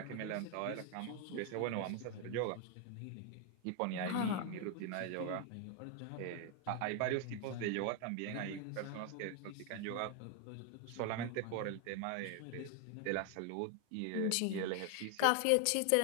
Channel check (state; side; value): different; both; correlation 0.01